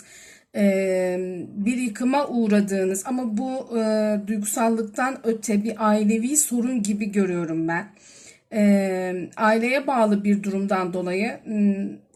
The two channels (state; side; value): identical; both; correlation 1.00